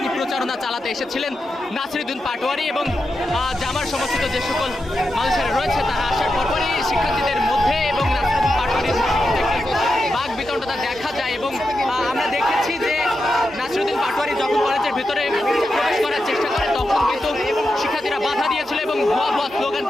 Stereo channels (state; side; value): normal; both; correlation 0.88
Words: প্রচারণা চালাতে এসেছিলেন নাসিরউদ্দিন পাটোয়ারি এবং জামার সমর্থিত যে সকল মানুষেরা রয়েছে তারা আসার পরপরই শিক্ষার্থীদের মধ্যে এবং নাসিরউদ্দিন পাটোয়ারির বাক বিতণ্ডতা দেখা যায় এবং আমরা দেখেছি যে নাসিরউদ্দিন পাটোয়ারি যখন কলেজের ভিতরে প্রবেশ করার চেষ্টা করে তখন কিন্তু শিক্ষার্থীরা বাধা দিয়েছিল এবং ভুয়া ভুয়া